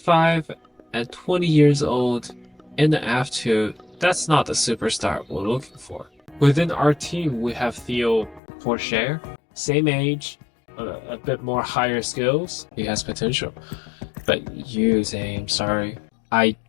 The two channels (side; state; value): right; drops out; at 8.4 s